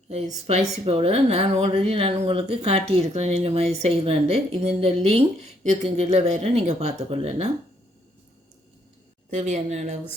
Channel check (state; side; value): normal; both; correlation 0.70